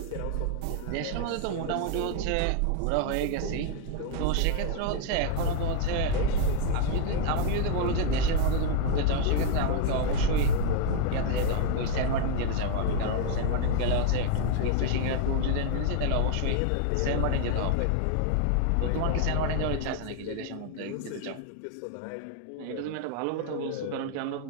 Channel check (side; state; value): both; different; correlation 0.00